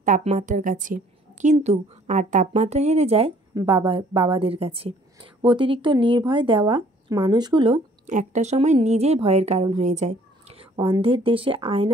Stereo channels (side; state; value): both; normal; correlation 0.58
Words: তাপমাত্রার কাছে, কিন্তু আর তাপমাত্রা হেরে যায় বাবাদের কাছে। অতিরিক্ত নির্ভয় দেওয়া মানুষগুলো একটা সময় নিজেই ভয়ের কারণ হয়ে যায়। অন্ধের দেশে